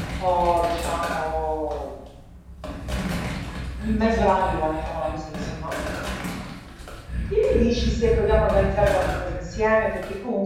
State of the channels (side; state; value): both; identical; correlation 1.00